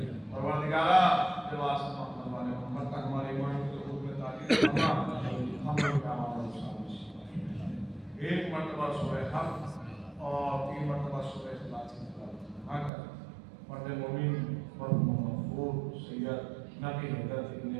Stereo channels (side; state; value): left; drops out; at 12.9 s